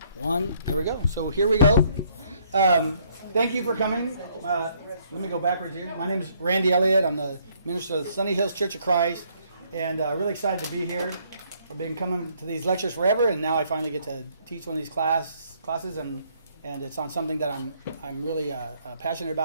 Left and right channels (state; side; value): inverted; both; correlation -0.67